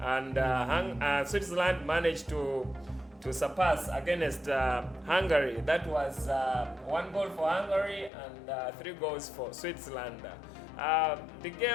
And Switzerland managed to surpass against Hungary. That was 1 goal for Hungary and 3 goals for Switzerland. The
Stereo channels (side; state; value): right; drops out; at 8.1 s